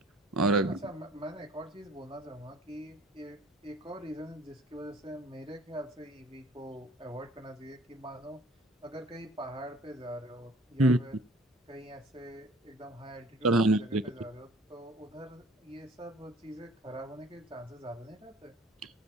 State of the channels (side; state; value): both; normal; correlation 0.51